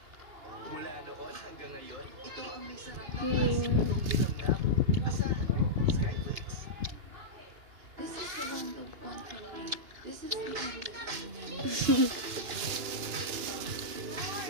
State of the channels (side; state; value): left; late; 2.9 ms